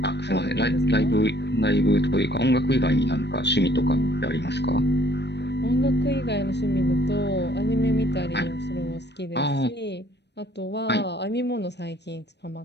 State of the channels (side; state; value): right; late; 0.50 ms